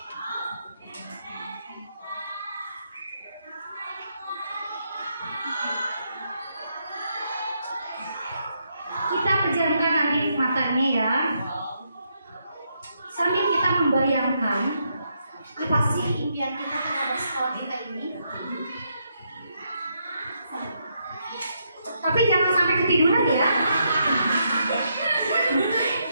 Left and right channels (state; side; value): inverted; both; correlation -0.78